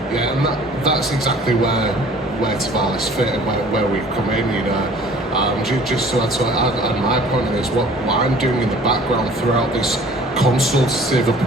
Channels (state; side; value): normal; both; correlation 0.50